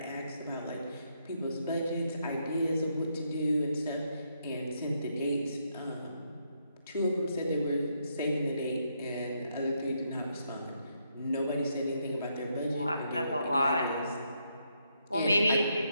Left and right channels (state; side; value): inverted; both; correlation -0.77